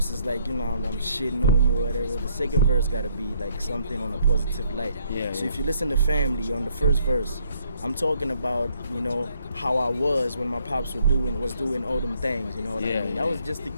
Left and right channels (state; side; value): inverted; both; correlation -0.68